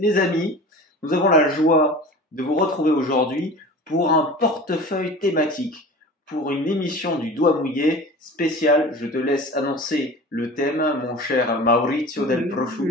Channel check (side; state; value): both; normal; correlation 0.37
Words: amis, nous avons la joie de vous retrouver aujourd'hui pour un portefeuille thématique, pour une émission du Doigt Mouillé spéciale. Je te laisse annoncer le thème, mon cher Maurizio del Prosciutto.